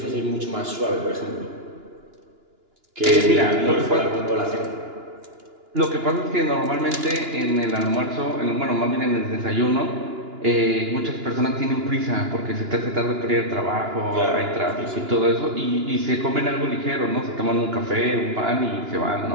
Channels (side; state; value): left; late; 2.9 ms